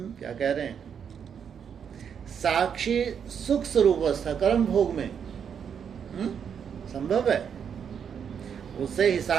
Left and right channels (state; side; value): quieter; left; 7.5 dB